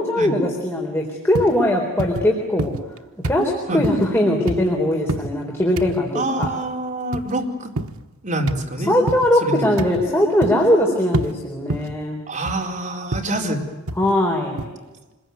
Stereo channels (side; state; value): both; normal; correlation 0.65